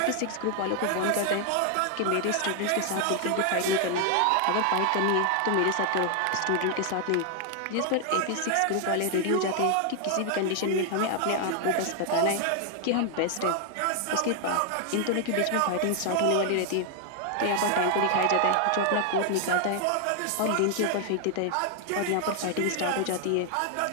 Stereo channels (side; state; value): both; different; correlation 0.00